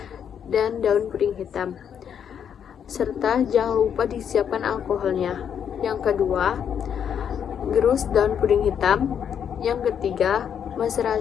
dan daun puring hitam. Serta jangan lupa disiapkan alkoholnya. Yang kedua, gerus daun puring hitam. Yang ketiga,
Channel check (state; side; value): quieter; right; 8.3 dB